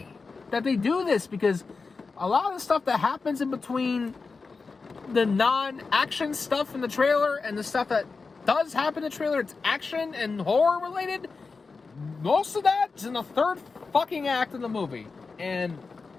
that they do this, because a lot of the stuff that happens in between the non-action stuff in the trailer and the stuff that does happen in the trailer, it's action and horror related, most of that is in the third fucking act of the movie. And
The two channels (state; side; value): quieter; right; 4.4 dB